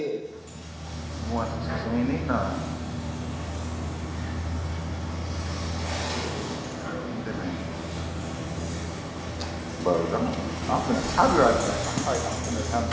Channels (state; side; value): identical; both; correlation 1.00